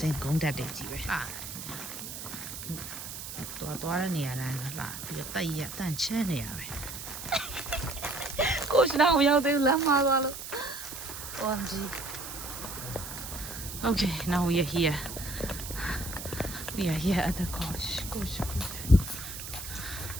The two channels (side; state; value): right; noise; hiss, 9 dB below the sound